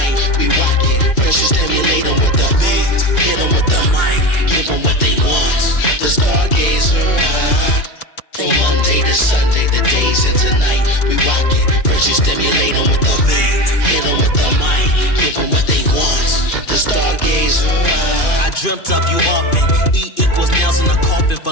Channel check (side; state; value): right; late; 2.5 ms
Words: we rock it. First you stimulate them with the beat, hit them with the mic, give them what they want. The stargazer. From Monday to Sunday, the days into night, we rock it. First you stimulate them with the beat, hit them with the mic, give them what they want. The stargazer. I dreamt of you often. E equals nails in a coffin.